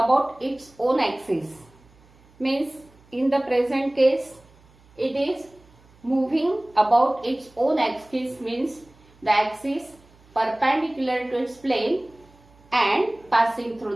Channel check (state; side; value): noise; right; hum, 29 dB below the sound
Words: its own axis, means in the present case it is moving about its own axis, means the axis perpendicular to its plane and passing